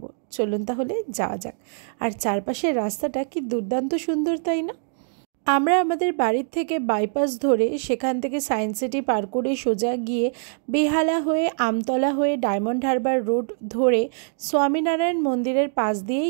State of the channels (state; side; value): silent; left; digital silence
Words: চলুন তাহলে যাওয়া যাক। আর চারপাশের রাস্তাটা কি দুর্দান্ত সুন্দর, তাই না? আমরা আমাদের বাড়ির থেকে বাইপাস ধরে সেখান থেকে সায়েন্স সিটি পার করে সোজা গিয়ে বেহালা হয়ে আমতলা হয়ে ডায়মন্ড হারবার রোড ধরে স্বামীনারায়ণ মন্দিরের পাশ